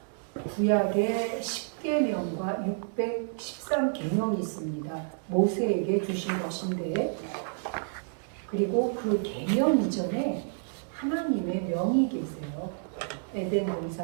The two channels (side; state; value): left; silent; digital silence